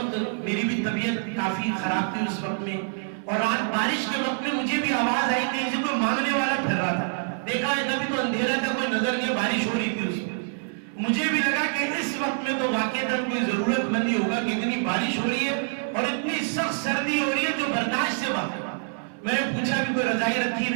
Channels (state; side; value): silent; left; 61 dB below the other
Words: میری بھی طبیعت کافی خراب تھی اس وقت میں, اور رات بارش کے وقت میں مجھے بھی آواز آئی کہ اسے کوئی مانگنے والا پھر رہا تھا، دیکھا ہے کبھی تو اندھیرا تھا، کوئی نظر نہیں، بارش ہو رہی تھی اس میں. مجھے بھی لگا کہ اس وقت میں تو واقعتاً کوئی ضرورت مند ہی ہوگا کہ اتنی بارش ہو رہی ہے اور اتنی سخت سردی ہو رہی ہے جو برداشت سے باہر. میں نے پوچھا بھی کوئی رضائی رکھی